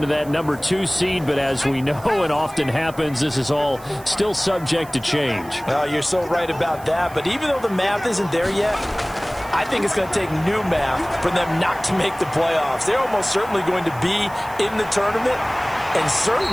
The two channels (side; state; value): right; noise; hiss, 21 dB below the sound